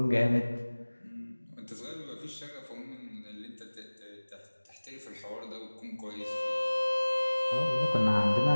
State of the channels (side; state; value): both; inverted; correlation -1.00